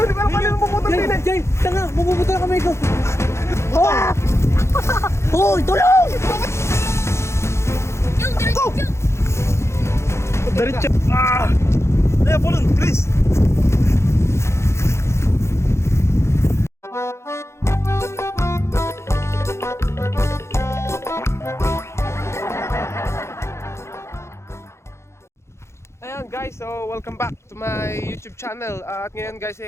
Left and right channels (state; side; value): late; right; 0.13 ms